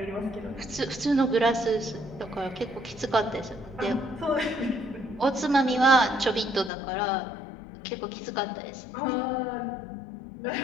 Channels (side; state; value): right; drops out; at 6.7 s